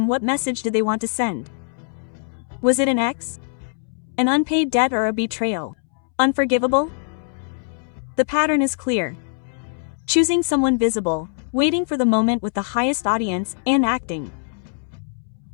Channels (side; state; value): right; silent; 64 dB below the other